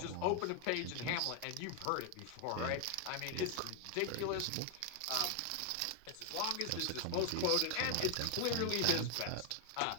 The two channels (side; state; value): both; different; correlation 0.00